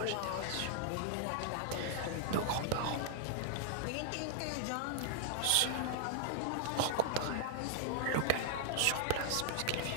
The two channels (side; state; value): both; different; correlation -0.01